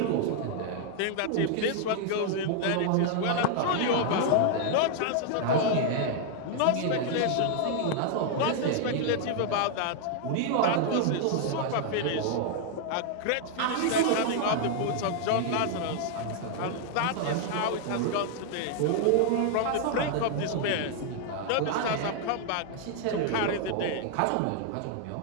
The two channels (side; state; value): both; different; correlation 0.00